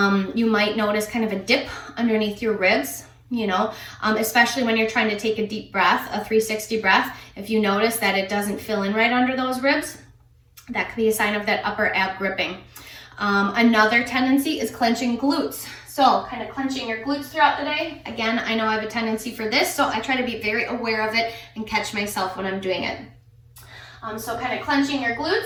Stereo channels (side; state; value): both; identical; correlation 1.00